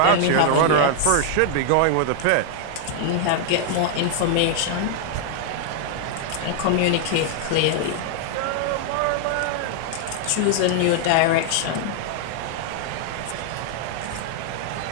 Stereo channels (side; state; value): both; different; correlation 0.00